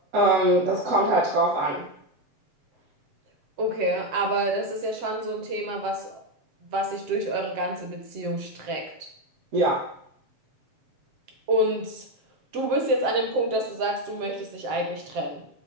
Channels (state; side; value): late; left; 7.5 ms